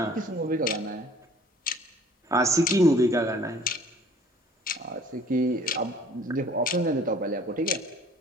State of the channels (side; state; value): both; normal; correlation 0.53